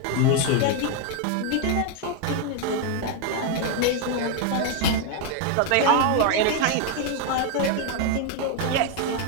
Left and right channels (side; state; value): both; different; correlation 0.01